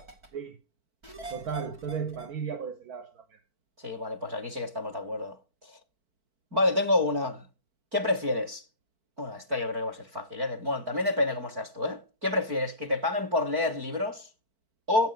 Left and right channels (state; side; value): late; left; 4.5 ms